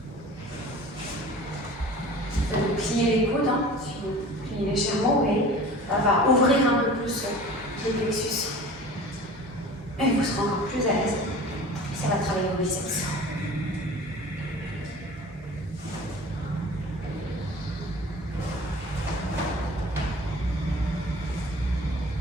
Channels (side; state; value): both; normal; correlation 0.41